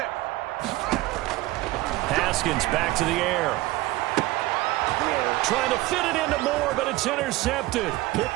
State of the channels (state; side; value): quieter; left; 18.6 dB